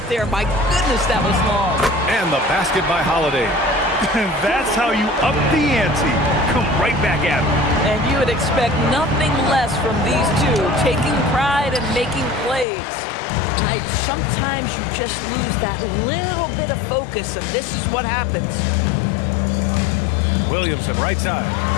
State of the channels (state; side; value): drops out; right; at 12.7 s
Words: there. My goodness, that was long. And the basket by Holiday. That's how you up the ante. Come right back at him. And you would expect nothing less from these two, taking pride and making plays. Right, sometimes you just lose that little bit of focus, and this is what happens. Williamson, right side.